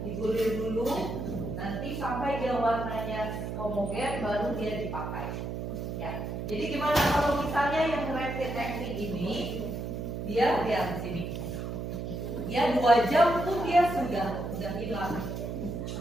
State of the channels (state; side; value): noise; right; hum, 5 dB below the sound